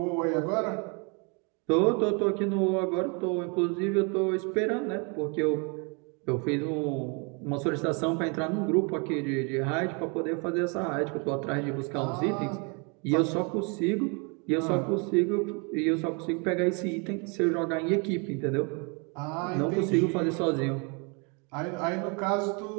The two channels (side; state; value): left; quieter; 33.8 dB